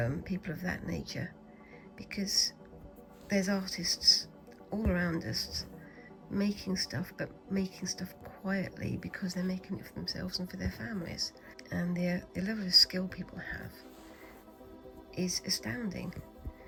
people of that nature, because there's artists all around us making stuff, but making stuff quietly because they're making it for themselves and for their families. And the level of skill people have is astounding.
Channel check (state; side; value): identical; both; correlation 1.00